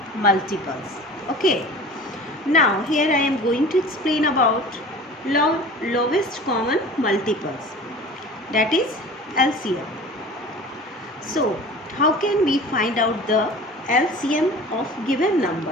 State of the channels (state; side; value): normal; both; correlation 0.40